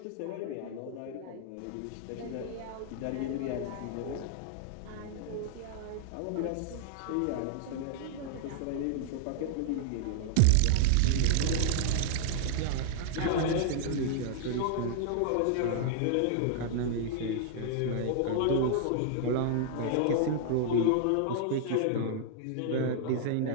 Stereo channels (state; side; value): different; both; correlation -0.01